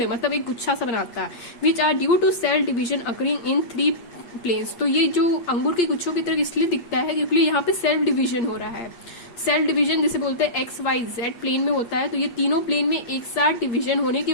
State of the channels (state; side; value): late; right; 8.4 ms